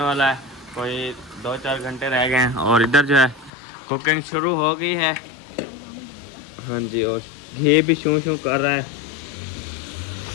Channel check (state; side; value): drops out; right; at 3.5 s